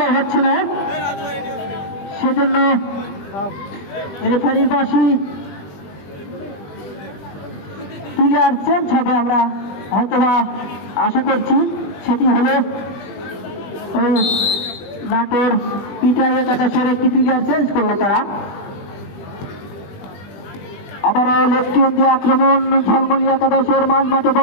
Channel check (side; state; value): right; late; 20 ms